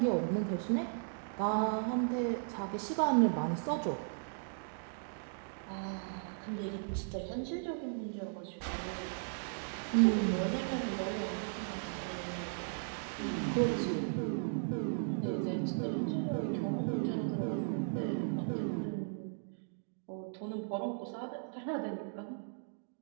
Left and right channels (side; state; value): left; silent; digital silence